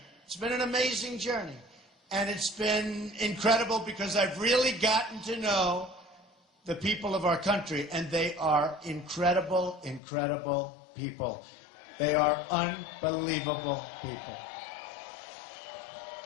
It's been an amazing journey. And it's been incredible because I've really gotten to know the people of our country, and they are incredible, incredible people. They are unbelievable people.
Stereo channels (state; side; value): drops out; right; at 10.0 s